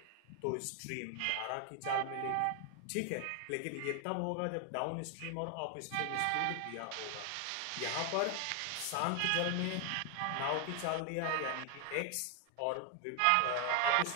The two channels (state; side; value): different; both; correlation 0.00